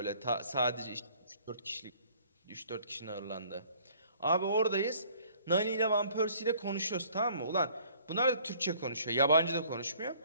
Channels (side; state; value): both; inverted; correlation -0.57